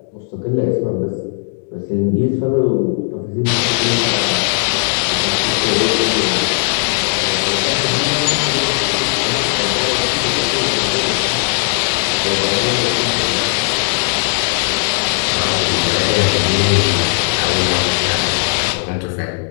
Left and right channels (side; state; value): right; silent; digital silence